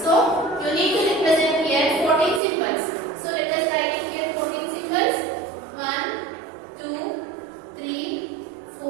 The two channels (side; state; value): left; drops out; at 2.4 s